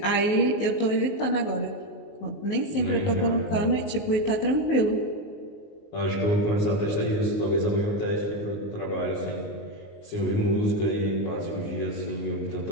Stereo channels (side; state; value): right; late; 19 ms